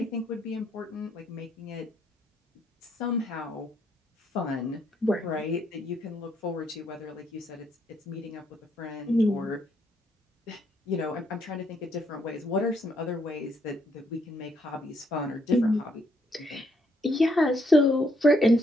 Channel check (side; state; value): both; normal; correlation 0.72